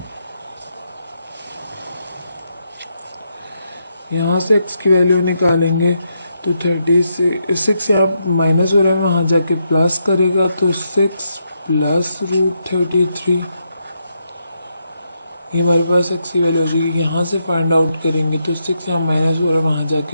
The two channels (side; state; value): both; inverted; correlation -0.81